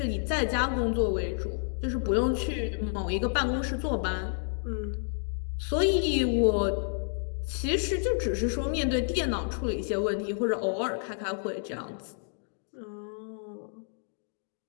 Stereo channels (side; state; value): right; silent; digital silence